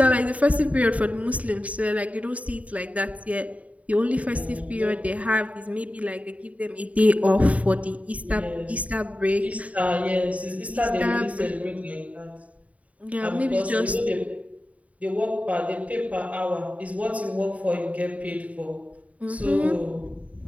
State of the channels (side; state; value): left; late; 0.068 ms